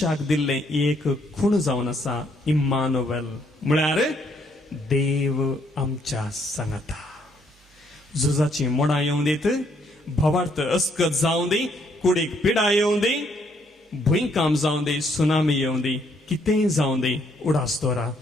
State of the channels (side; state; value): both; normal; correlation 0.70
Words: दिल्ले एक खूण जावन आसा इम्मानुएल म्हळ्यार देव आमच्या सांगता. झुजाची मोडां येवं दीत, भवार्थ अस्कत जावं दी, कुडीक पिडा येवं दी, भुंयकाम जावं दी, सुनामी येवं दी, कितेंय जावं दी उडासतोरा